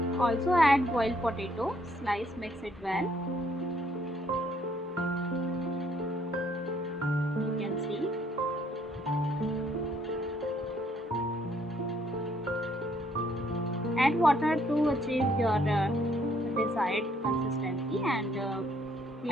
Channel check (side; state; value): both; normal; correlation 0.67